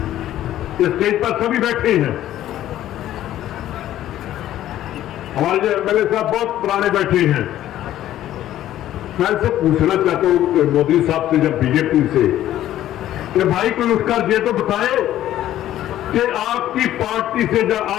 इस स्टेज पर सभी बैठे हैं। हमारे जो एमएलए साहब बहुत पुराने बैठे हैं। मैं इनसे पूछना चाहता हूं मोदी साहब से, जब बीजेपी से, कि भाई कोई उठकर ये तो बताए कि आपकी पार्टी से या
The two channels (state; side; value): quieter; right; 12.9 dB